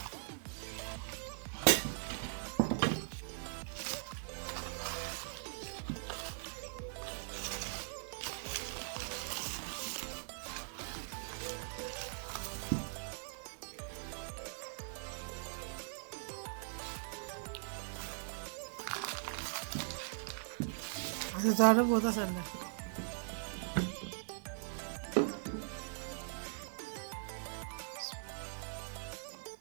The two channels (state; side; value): silent; left; 51 dB below the other